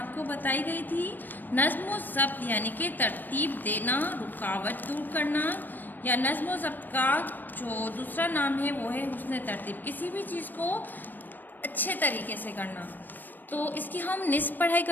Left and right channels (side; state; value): right; late; 0.090 ms